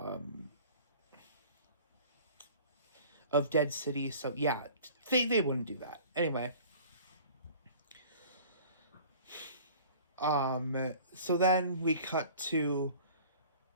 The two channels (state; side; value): inverted; both; correlation -0.46